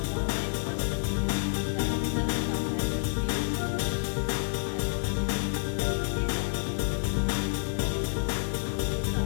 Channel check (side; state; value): right; silent; digital silence